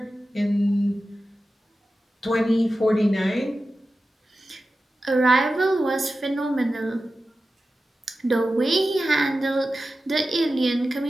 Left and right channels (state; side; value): normal; both; correlation 0.93